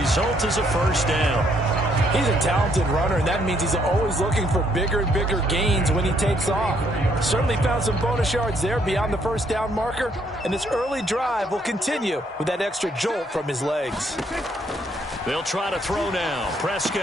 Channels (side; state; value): both; normal; correlation 0.69